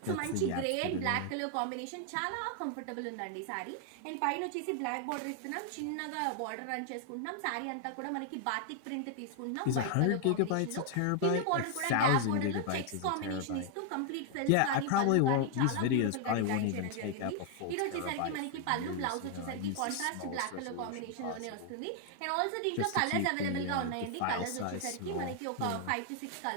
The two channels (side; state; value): both; different; correlation 0.00